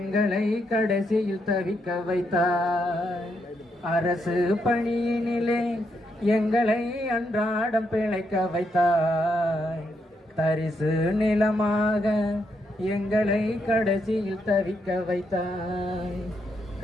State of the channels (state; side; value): normal; both; correlation 0.79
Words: கடைசியில் தவிக்க வைத்தாய். அரசு பணியினிலே எங்களை அன்றாடம் பிழைக்க வைத்தாய், தரிசு நிலமாக எங்களை கடைசியில் தவிக்க வைத்தாய்.